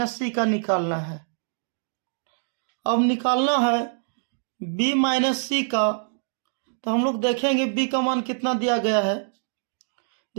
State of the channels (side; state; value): left; silent; digital silence